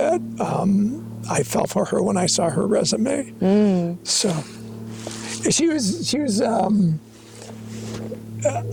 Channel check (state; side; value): identical; both; correlation 1.00